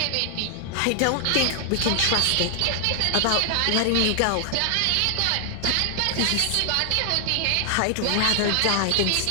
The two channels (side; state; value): both; different; correlation 0.00